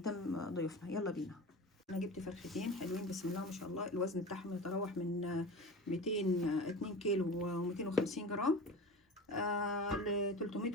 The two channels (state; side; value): normal; both; correlation 0.32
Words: ضيوفنا. يلا بينا. انا جبت فرختين حلوين بسم الله ما شاء الله، الوزن بتاعهم يتراوح من 2 كيلو و250 جرام ل 300